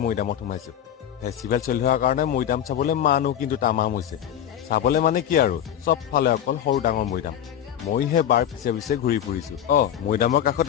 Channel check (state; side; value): quieter; right; 10.2 dB